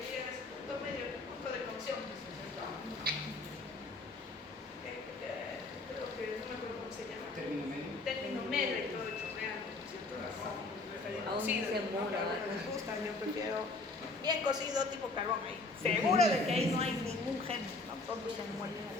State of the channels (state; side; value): quieter; right; 3.3 dB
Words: a ese punto medio, punto de cocción, ¿cierto? Creo que no me acuerdo cómo se llama. Término medio. Término medio y todo chorreando, ¿cierto? Aún ni se mora, ¿no? ¿verdad? Me gusta, yo prefiero bien cocido, tipo carbón ahí. Seguro de que ahí no hay ningún gen, ¿no? Todos se mueren